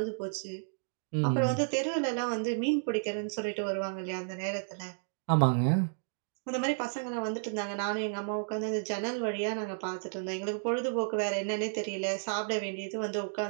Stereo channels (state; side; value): silent; left; digital silence